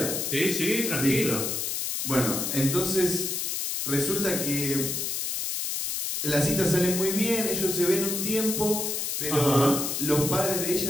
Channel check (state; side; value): noise; left; hiss, 2 dB below the sound